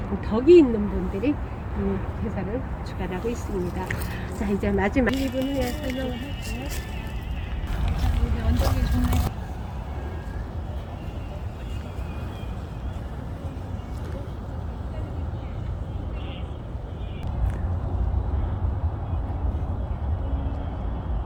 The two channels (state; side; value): identical; both; correlation 1.00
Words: 덕이 있는 분들이 이 제사를 주관하고 있습니다. 자, 이제 마지막 2분 후에 설명을 할게요. 자, 이제 언덕이 좋네.